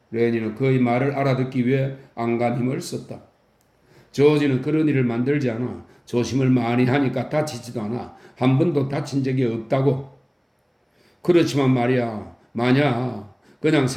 레니는 그의 말을 알아듣기 위해 안간 힘을 썼다. 조지는 그런 일을 만들지 않아. 조심을 많이 하니까 다치지도 않아. 한 번도 다친 적이 없다고. 그렇지만 말이야. 만약 그냥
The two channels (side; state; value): both; identical; correlation 1.00